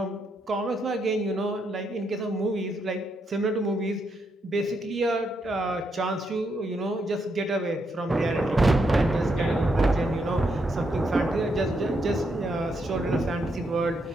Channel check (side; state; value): both; normal; correlation 0.79